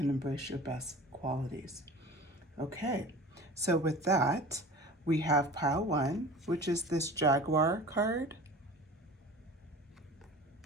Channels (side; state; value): both; normal; correlation 0.39